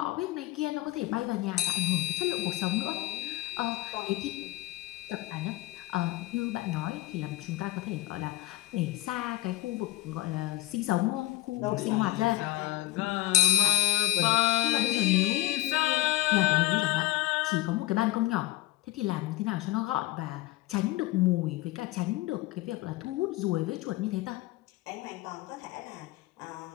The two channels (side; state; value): right; quieter; 15.6 dB